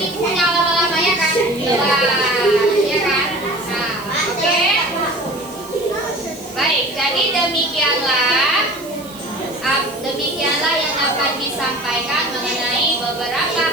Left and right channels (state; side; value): noise; right; hiss, 19 dB below the sound